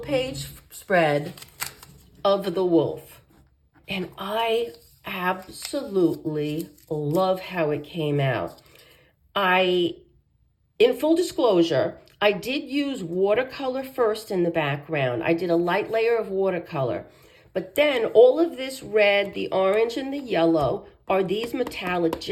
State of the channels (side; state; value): both; identical; correlation 1.00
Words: page spread of the wolf. And I absolutely love how it came out. In full disclosure, I did use watercolor first in the background. I did a light layer of watercolor, But then all of this red, the orange, and the yellow are these metallic